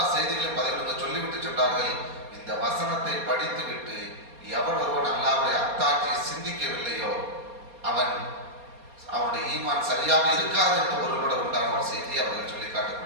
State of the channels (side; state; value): left; late; 4.2 ms